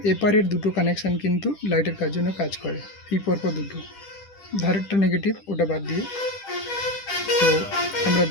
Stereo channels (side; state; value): right; late; 10 ms